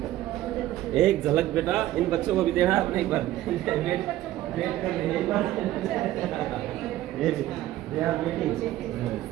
एक झलक बेटा इन बच्चों को भी देना अपने एक बार। वेट कर ले एक बार। ये दे आर वेटिंग।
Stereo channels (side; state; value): left; quieter; 14.6 dB